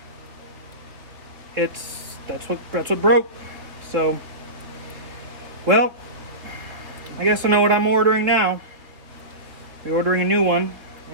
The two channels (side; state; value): left; late; 3.5 ms